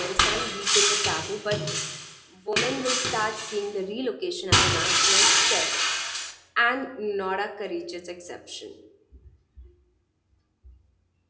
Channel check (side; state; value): both; identical; correlation 1.00